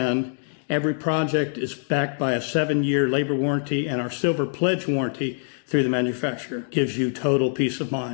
Every project is backed by a 7-year labor warranty, and our Silver Pledge warranty through the manufacturer gives you total peace of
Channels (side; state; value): right; silent; digital silence